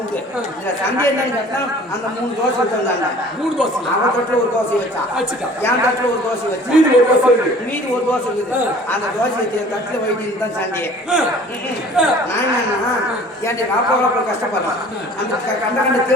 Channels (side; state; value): both; normal; correlation 0.49